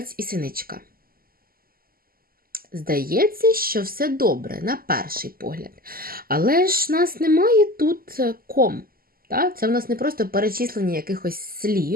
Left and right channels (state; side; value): late; left; 0.42 ms